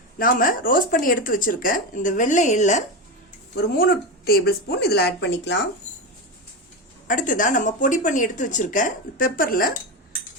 நாம ரோஸ்ட் பண்ணி எடுத்து வச்சிருக்க இந்த வெள்ளை எள்ள ஒரு 3 டேபிள் ஸ்பூன் இதில் ஆட் பண்ணிக்கலாம். அடுத்ததா நம்ம பொடி பண்ணி எடுத்து வச்சிருக்க பெப்பர்ல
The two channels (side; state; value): both; normal; correlation 0.16